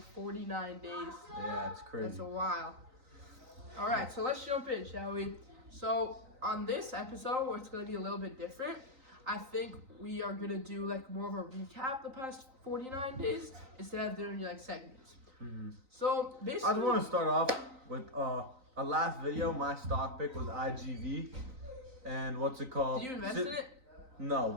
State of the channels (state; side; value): late; left; 3.9 ms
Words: 49 days. Yeah, it's crazy. That's a while. All right, so let's jump in, shall we? So on this episode, it's going to be a little bit different. I think we are going to do like more of a recap the past 49 days instead of doing like segments. So basically, I just want to start off with a last video. My stock pick was IGV, and what's it called? did you invest in it? No,